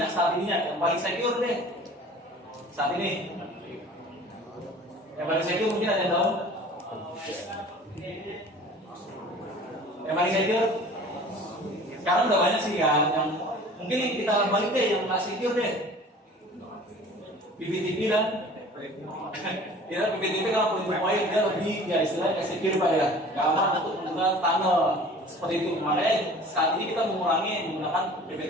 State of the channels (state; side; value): normal; both; correlation 0.45